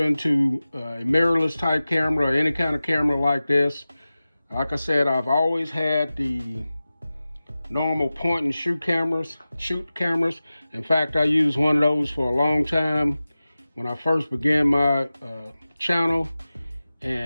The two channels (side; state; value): both; inverted; correlation -0.96